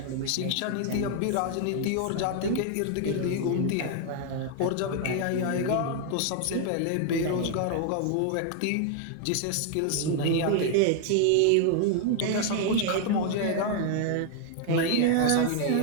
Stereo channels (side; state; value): both; different; correlation 0.00